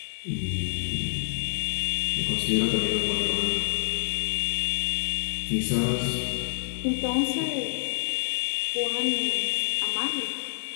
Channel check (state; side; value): silent; right; digital silence